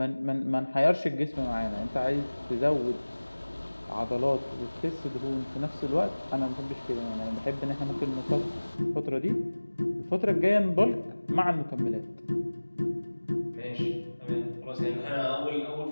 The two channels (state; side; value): inverted; both; correlation -1.00